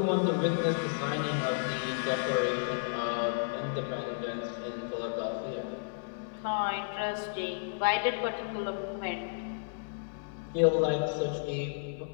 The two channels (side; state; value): right; silent; 56 dB below the other